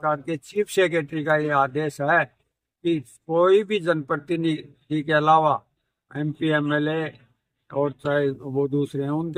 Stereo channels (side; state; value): both; identical; correlation 1.00